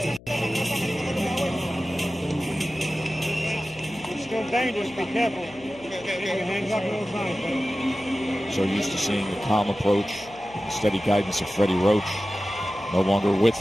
It's still dangerous. Be careful. Hands up all the time. So used to seeing the calm approach, the steady guidance of Freddie Roach. No longer with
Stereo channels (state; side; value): noise; left; hum, 21 dB below the sound